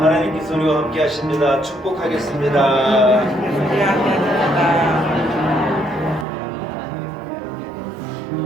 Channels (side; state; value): left; drops out; at 6.2 s